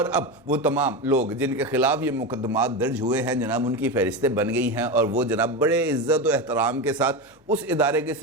अब वो तमाम लोग जिनके खिलाफ ये मुकदमात दर्ज हुए हैं जनाब, उनकी फहरिस्तें बन गई हैं और वो जनाब बड़े इज़्ज़त और एहतराम के साथ उस इदारे के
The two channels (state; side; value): normal; both; correlation 0.19